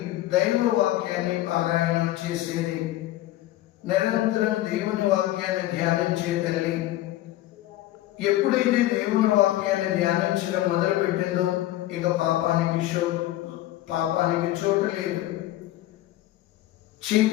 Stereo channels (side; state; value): right; quieter; 15.1 dB